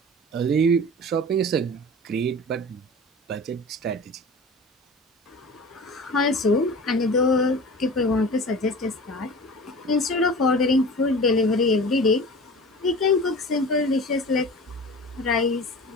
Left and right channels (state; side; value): normal; both; correlation 0.37